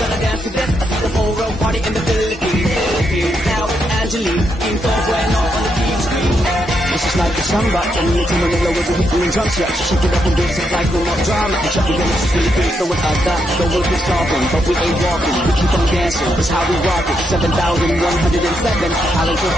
dance to this. I see the whole world party in the Philippines. Now it's Angelique, in full bueno on the TV screen. This is like a samba, and you to Manila with the weekly drums. Yeah, shake it up and dance it like no more drama. And shut the game, it's Philippines, so without that, the world is solving, but we ain't walking. We keep on dancing, that's how we rock it. 7,107 islands of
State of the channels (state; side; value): normal; both; correlation 0.80